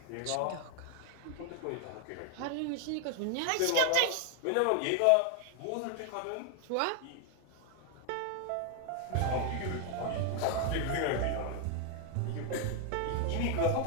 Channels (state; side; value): different; both; correlation 0.00